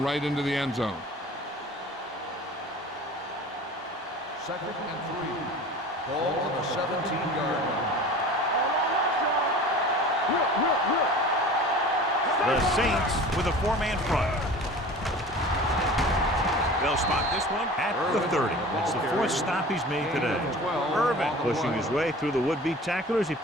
right into the end zone. Second and 3. Ball on the 17-yard line. The Saints with a four-man front. They'll spot this one at the 30. It's the fourth stop he's made today. Irvin pushing his way through the would-be tacklers. He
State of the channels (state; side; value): normal; both; correlation 0.40